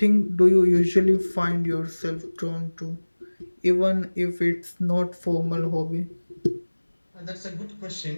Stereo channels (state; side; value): inverted; both; correlation -1.00